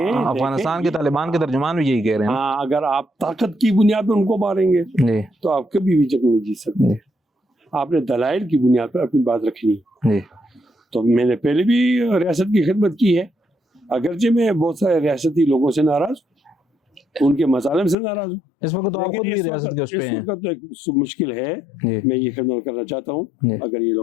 کے طالبان کے ترجمان بھی یہی کہہ رہے ہیں. ہاں، اگر آپ طاقت کی بنیاد پہ ان کو ماریں گے جی تو آپ کبھی بھی جنگ نہیں جیت سکتے. آپ نے دلائل کی بنیاد پر اپنی بات رکھنی. جی تو میں نے پہلے بھی ریاست کی خدمت کی ہے، اگرچہ میں بہت سارے ریاستی لوگوں سے ناراض ہوں، ان کے مظالم سے ناراض ہوں. اس وقت تو آپ خود بھی ریاست کے اس پہ ہیں. اس وقت تو ایک مشکل ہے. میں یہ خدمت کرنا چاہتا ہوں اگر یہ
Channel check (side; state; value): right; drops out; at 17.9 s